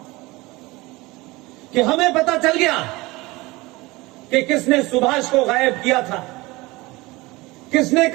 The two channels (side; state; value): left; quieter; 21.9 dB